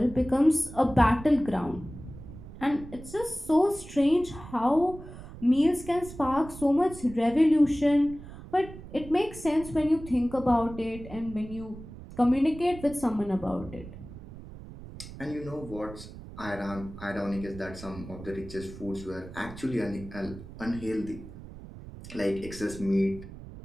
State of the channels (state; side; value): noise; right; rumble, 14 dB below the sound